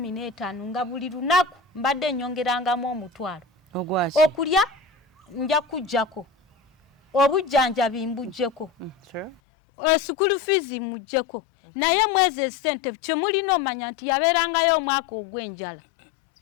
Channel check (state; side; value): drops out; right; at 9.3 s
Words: nga buli lunaku mbadde nnyongerangamu omutwalo ogwaki okulya nja kujjako obujjanjabi mbujjeko school fees mujjeko naye mwezi esente kyemulina omanya nti yabeerangayo omwaka ogw'enjala